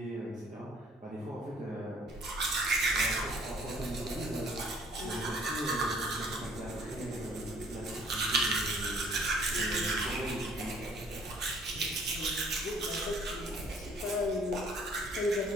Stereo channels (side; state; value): both; normal; correlation 0.58